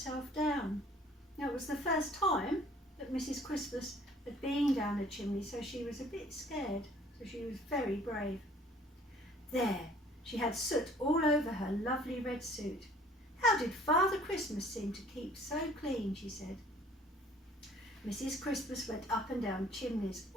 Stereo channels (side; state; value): both; normal; correlation 0.55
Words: down. Now, it was the first time that Mrs. Christmas had been down a chimney, so she was a bit scared, so she was very brave. There, she had soot all over her lovely red suit. How did Father Christmas seem to keep so clean, she said. Mrs. Christmas went up and down chimneys